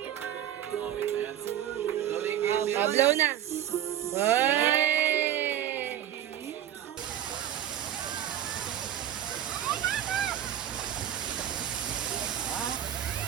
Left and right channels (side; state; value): left; quieter; 11.0 dB